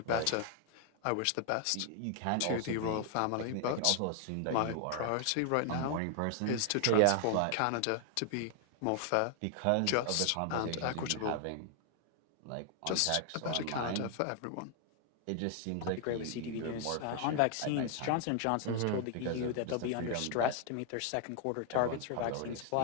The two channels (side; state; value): both; different; correlation 0.00